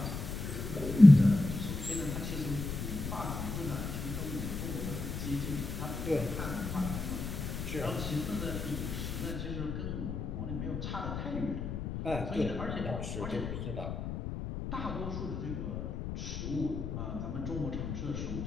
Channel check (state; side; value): noise; left; rumble, 5 dB below the sound